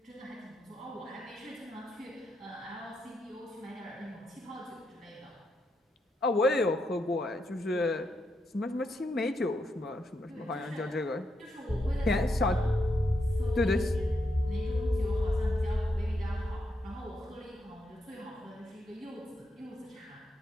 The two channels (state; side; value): normal; both; correlation 0.81